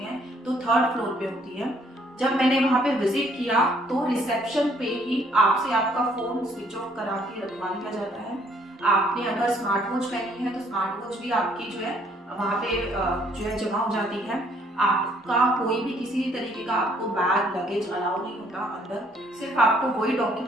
हैं तो थर्ड फ्लोर पे होती है। जब मैंने वहाँ पे विजिट किया तो रिसेप्शन पे ही आपसे आपका फोन स्विच ऑफ करा के रखवा लिया जाता है। आपने अगर स्मार्ट वॉच पहनी है तो स्मार्ट वॉच भी आपकी जो है वहाँ पे जो है जमा हो जाती है। आपका कोई भी किसी तरीके का आपको बैग लगेज अलाउ नहीं होता अंदर, सिर्फ आपको वही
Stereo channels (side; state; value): both; normal; correlation 0.65